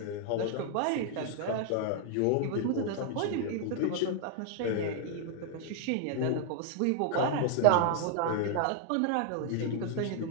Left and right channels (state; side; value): different; both; correlation 0.00